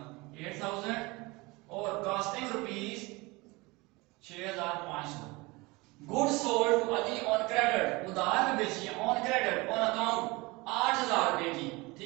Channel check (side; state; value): left; quieter; 24.0 dB